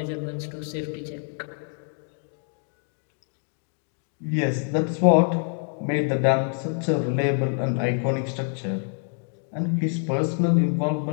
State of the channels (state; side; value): silent; right; 55 dB below the other